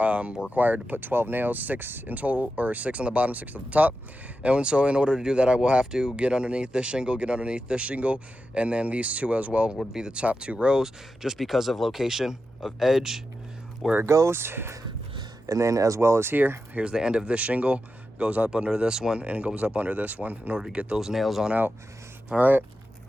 we're required to put 12 nails, 6 in total, or 6 on the bottom, 6 at the top. And so in order to do that, I will have to get underneath this shingle, and then these 2 as well would be the top 2 rows, just because of location of edge where it goes. And then as well as here's the end of this shingle, goes up under this one and goes up under this one in order to get those nails on out. All right,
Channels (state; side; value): normal; both; correlation 0.90